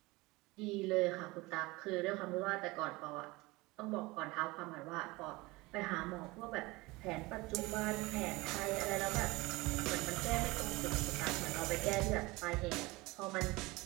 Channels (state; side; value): quieter; left; 22.3 dB